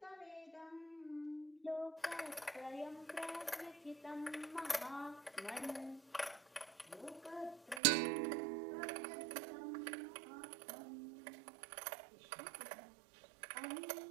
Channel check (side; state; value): left; drops out; at 7.8 s